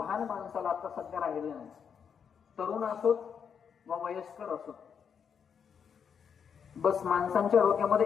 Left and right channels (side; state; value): right; quieter; 7.1 dB